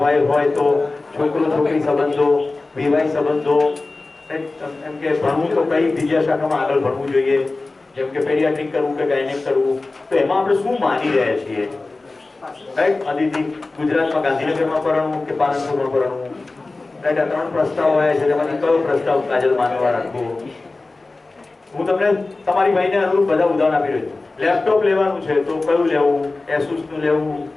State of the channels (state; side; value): quieter; right; 3.4 dB